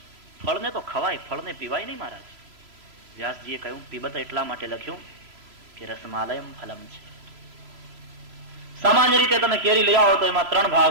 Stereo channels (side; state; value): left; late; 3.0 ms